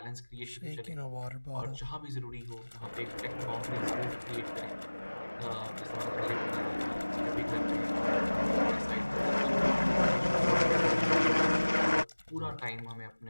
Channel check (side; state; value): both; inverted; correlation -1.00